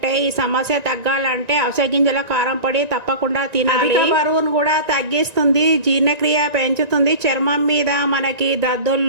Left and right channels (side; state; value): left; late; 1.9 ms